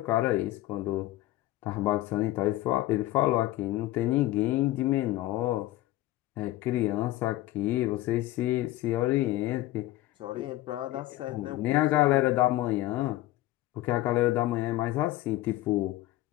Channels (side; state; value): right; quieter; 16.1 dB